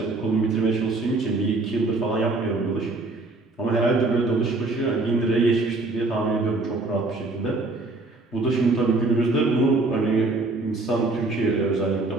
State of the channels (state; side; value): quieter; left; 3.3 dB